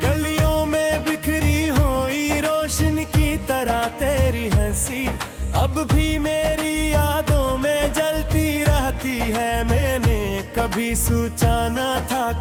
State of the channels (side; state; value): both; identical; correlation 1.00